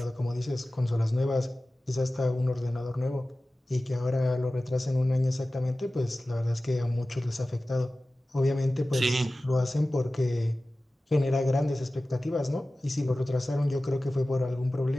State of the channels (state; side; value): normal; both; correlation 0.96